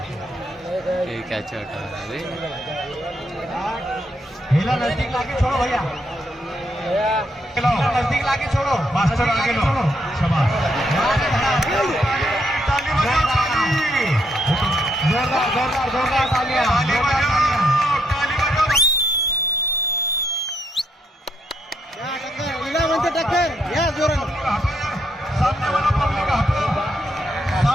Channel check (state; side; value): normal; both; correlation 0.76